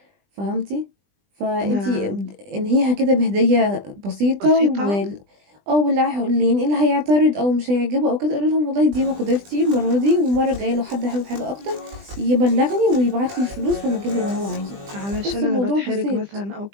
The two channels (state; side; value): late; left; 20 ms